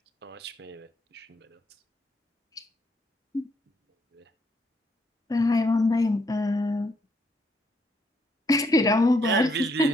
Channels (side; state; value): both; normal; correlation 0.73